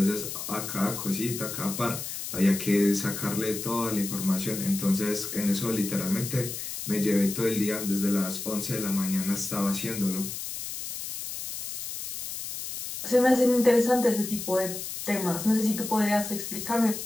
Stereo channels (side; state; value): left; noise; hiss, 7 dB below the sound